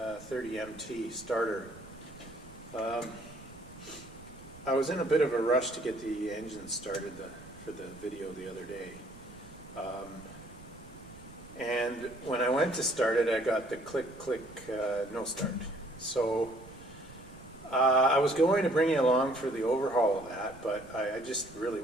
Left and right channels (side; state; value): right; noise; rumble, 20 dB below the sound